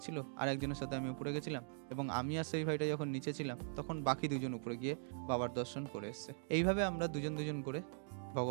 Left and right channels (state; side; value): silent; left; digital silence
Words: আর একজনের সাথে আমি উপরে গেছিলাম, এবং আমি আর সেই ভাইটা যখন নিচে ছিলাম তখন বাকি 2জন উপরে গিয়ে বাবার দর্শন করে এসেছে। এইভাবে আমরা দুজন দুজন করে